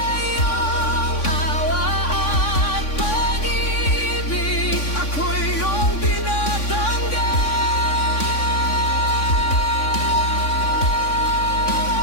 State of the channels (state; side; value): late; right; 3.5 ms